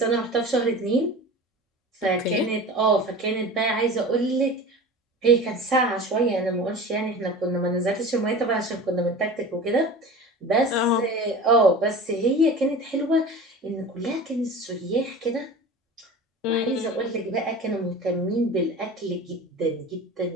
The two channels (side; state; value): both; normal; correlation 0.35